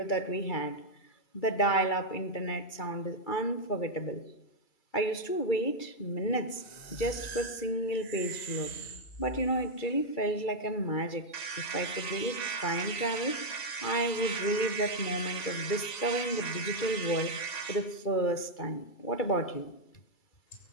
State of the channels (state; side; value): late; right; 2.3 ms